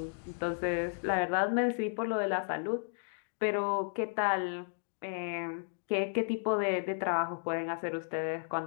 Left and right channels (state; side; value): silent; right; digital silence